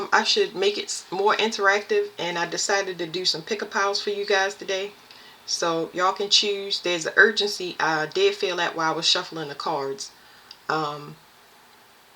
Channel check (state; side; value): identical; both; correlation 1.00